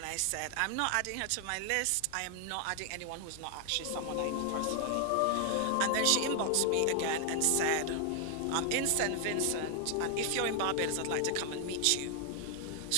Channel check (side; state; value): both; different; correlation 0.00